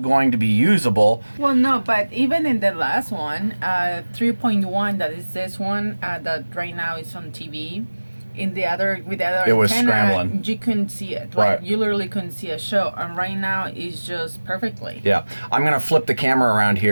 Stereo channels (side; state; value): both; inverted; correlation -1.00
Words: to be usable. Well, no, but even in the last one, 3.1, that is this one that right now is on TV. In the other, with the other it was antenna, scrambling. You couldn't see it. Right. You literally couldn't see a show. And right now, it's just perfectly. Yeah. I'm going to flip the camera around